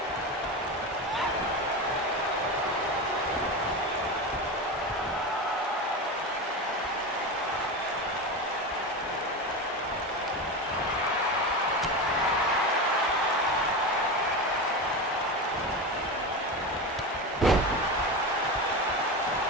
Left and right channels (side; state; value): both; normal; correlation 0.22